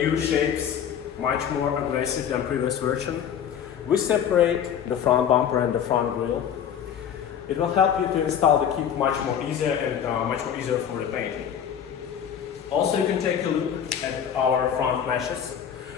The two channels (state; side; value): quieter; right; 8.7 dB